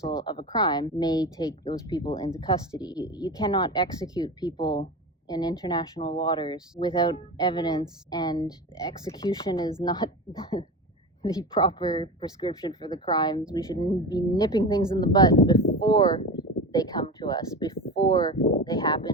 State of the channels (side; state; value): both; normal; correlation 0.26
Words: of a crime, may take those people into custody. You cannot execute people in international waters without evidence, and execution is not the proper prescription for the crimes. We should be nipping things in the bud before they come to us, before they